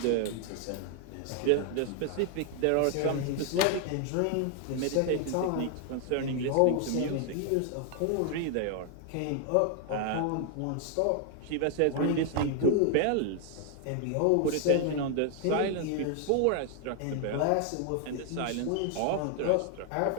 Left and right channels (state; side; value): different; both; correlation 0.00